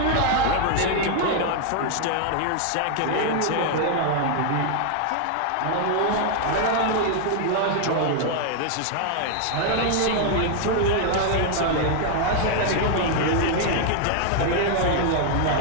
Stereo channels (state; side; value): different; both; correlation 0.00